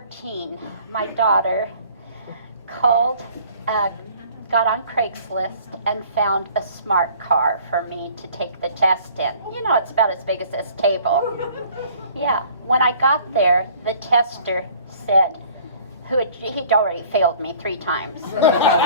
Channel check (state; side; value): inverted; both; correlation -0.52